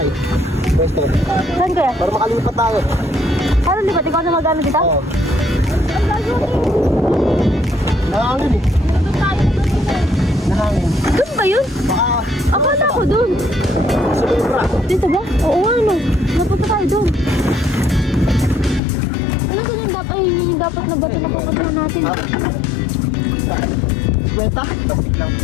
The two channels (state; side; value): drops out; right; at 18.8 s